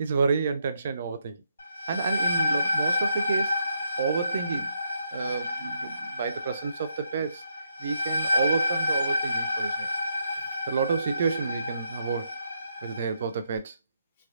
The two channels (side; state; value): both; inverted; correlation -0.79